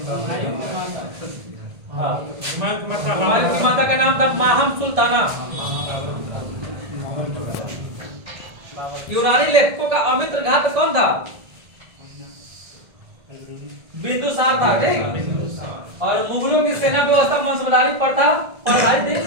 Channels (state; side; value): late; left; 1.7 ms